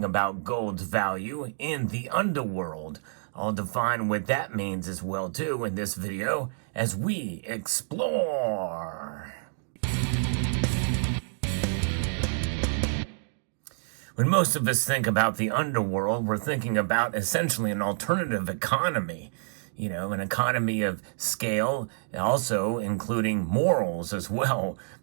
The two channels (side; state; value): left; silent; digital silence